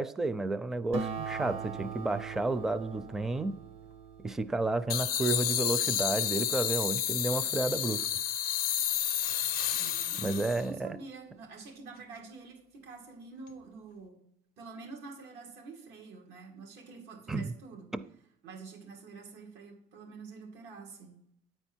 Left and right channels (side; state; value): both; normal; correlation 0.48